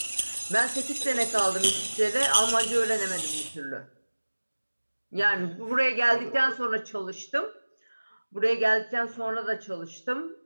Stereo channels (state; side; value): inverted; both; correlation -1.00